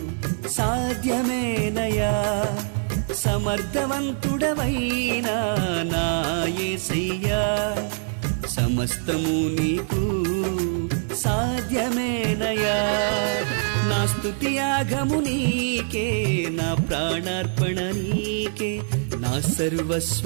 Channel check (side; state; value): left; silent; 63 dB below the other